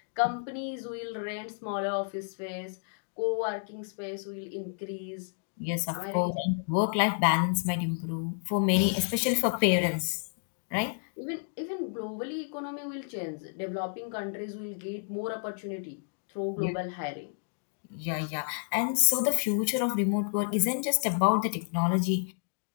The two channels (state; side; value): silent; right; digital silence